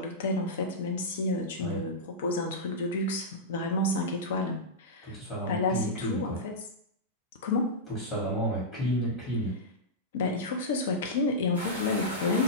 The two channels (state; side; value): normal; both; correlation -0.10